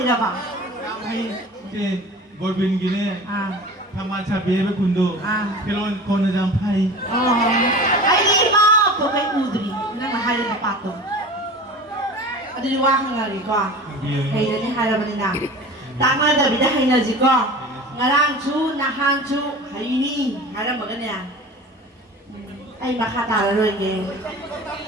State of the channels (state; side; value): normal; both; correlation 0.37